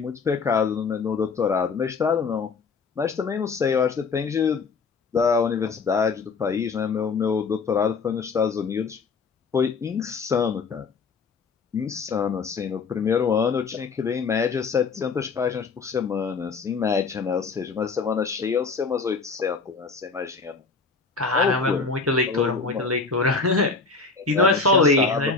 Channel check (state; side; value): quieter; right; 4.7 dB